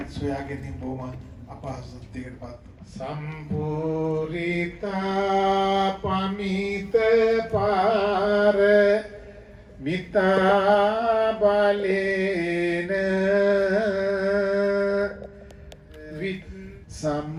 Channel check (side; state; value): both; identical; correlation 1.00